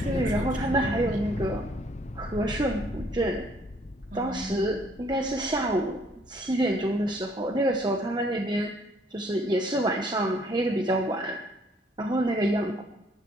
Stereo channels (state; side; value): normal; both; correlation 0.63